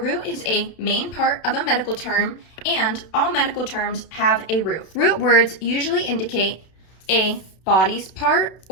is a main part of a medical term, and all medical terms have a root. Root words usually indicate a body's part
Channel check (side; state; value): right; late; 32 ms